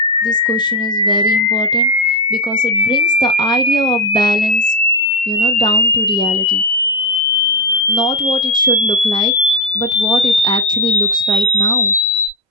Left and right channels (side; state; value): both; normal; correlation 0.07